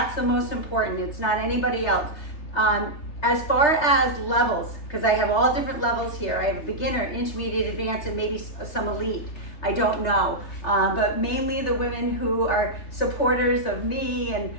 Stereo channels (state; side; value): late; right; 3.3 ms